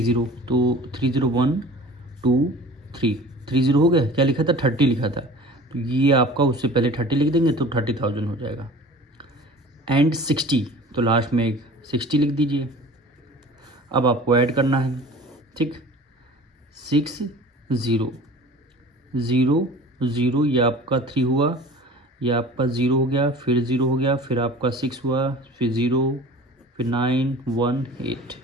जीरो, तो 3 जीरो 1 2 3, 3 जीरो हो गया, क्या लिखा था 30 लिखा था, तो ये आपका उससे पहले 30 लिख देंगे तो 30,000 हो जाएगा। एंड 60, तो लास्ट में एक 60 लिख दीजिए। अब आपको ऐड करना है, ठीक। 6 0 0 0, ये आपका 3 हुआ, ये आपका 0 हो गया, फिर 0 हो गया, फिर आपका 6 हुआ, फिर 0, फिर 9 1 8,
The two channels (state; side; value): normal; both; correlation 0.43